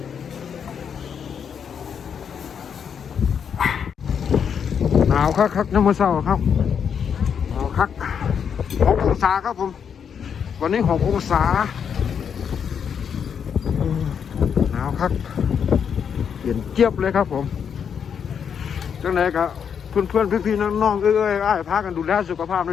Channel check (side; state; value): right; quieter; 7.4 dB